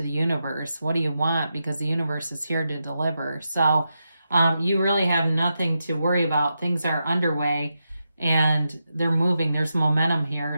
the universe. What do you want? Because the universe is here to deliver. So you really have nothing to worry about. Things are underway and they're moving. There's momentum here.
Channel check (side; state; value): both; inverted; correlation -0.87